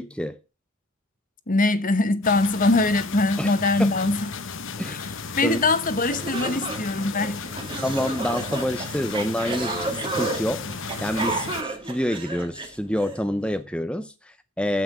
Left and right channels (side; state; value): both; normal; correlation 0.53